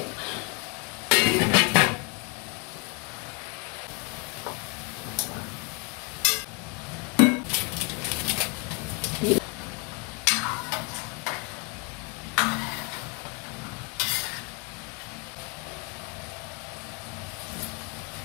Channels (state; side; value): quieter; right; 30.3 dB